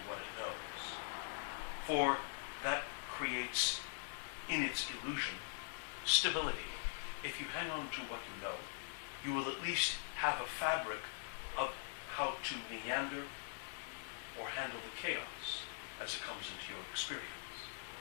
what it knows. For that creates, in its illusion, stability. If you hang on to what you know, you will at least have a fabric of how to meander or handle the chaos as it comes into your experience.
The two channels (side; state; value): right; silent; digital silence